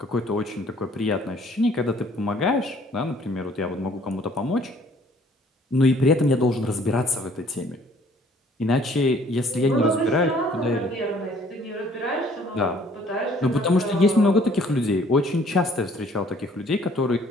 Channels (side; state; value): both; normal; correlation 0.58